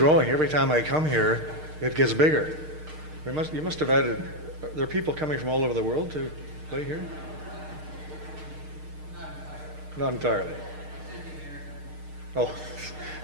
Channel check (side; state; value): left; late; 6.5 ms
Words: Every time I come here, it gets bigger. You must have added, there are people coming from all over the world to play here? Not entirely. Oh,